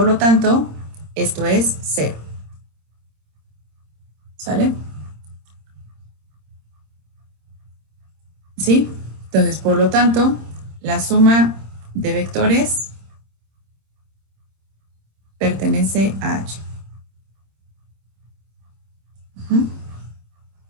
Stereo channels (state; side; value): late; left; 26 ms